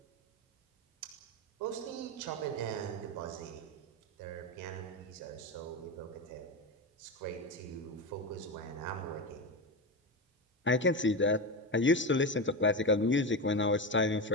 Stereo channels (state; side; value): normal; both; correlation 0.18